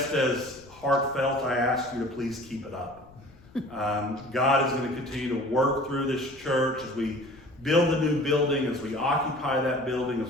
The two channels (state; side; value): noise; left; rumble, 25 dB below the sound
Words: as heartfelt, I ask you to please keep it up. God is going to continue to work through this church as we build the new building, as we occupy that building,